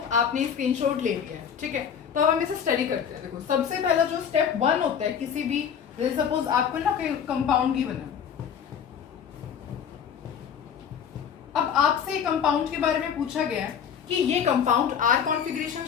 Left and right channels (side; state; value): right; quieter; 7.8 dB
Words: आपने स्क्रीनशॉट ले लिया है। ठीक है, तो अब हम इसे स्टडी करते हैं। देखो, सबसे पहला जो स्टेप 1 होता है किसी भी, सपोज आपको ना कोई कंपाउंड गिवन है, अब आपसे कंपाउंड के बारे में पूछा गया है कि ये कंपाउंड आर कॉन्फ़िगरेशन